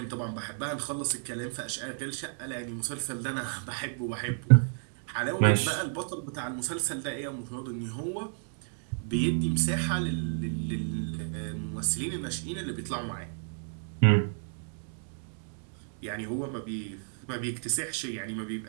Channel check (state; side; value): silent; left; digital silence